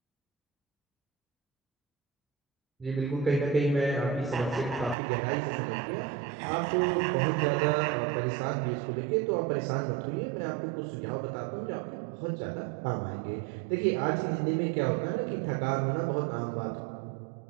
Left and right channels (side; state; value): left; drops out; at 5.0 s